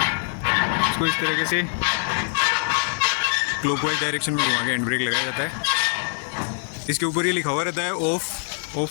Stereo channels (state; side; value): silent; right; 60 dB below the other